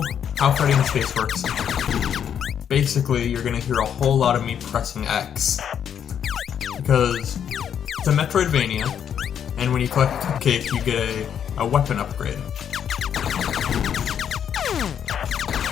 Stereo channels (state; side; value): quieter; right; 8.7 dB